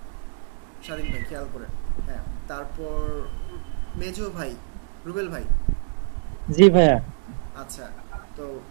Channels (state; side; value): silent; left; digital silence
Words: স্বাধীন ভাই খেয়াল করেন। হ্যাঁ, তারপর মেজো ভাই, রুবেল ভাই। জি ভাইয়া। আচ্ছা, তো